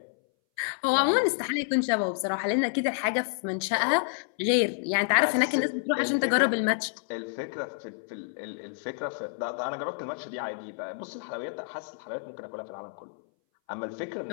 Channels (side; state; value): right; silent; 59 dB below the other